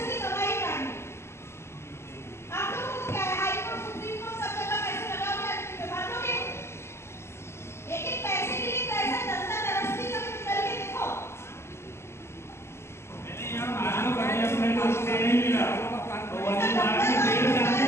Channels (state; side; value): late; right; 0.13 ms